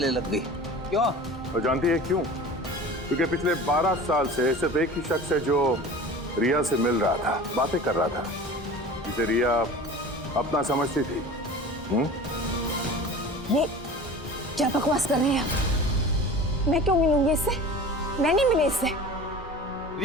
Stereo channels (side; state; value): both; normal; correlation 0.38